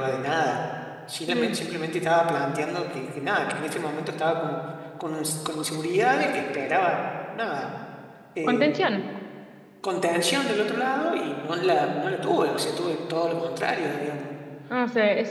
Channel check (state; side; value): identical; both; correlation 1.00